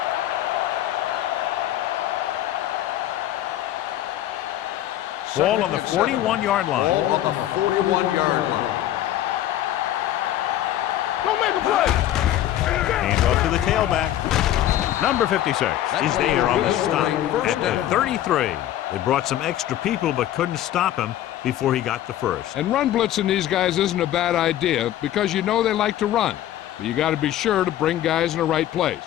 Ball on the 41-yard line. Ball on the 41-yard line. Don't make a play. Hand off to the tailback. Number 56 is there on the stop at the 33. They brought some extra people but couldn't stop him before he got the first. And run blitzing these guys isn't a bad idea because you know they like to run. But you got to be sure to bring guys in the right place.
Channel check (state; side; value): quieter; right; 12.7 dB